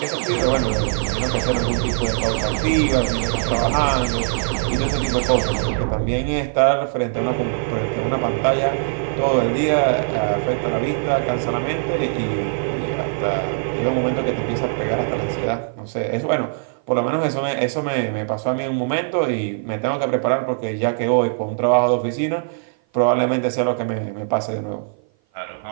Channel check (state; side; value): silent; left; 56 dB below the other